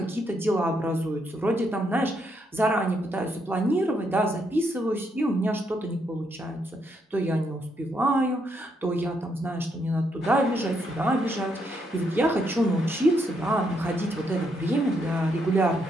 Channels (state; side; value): normal; both; correlation 0.77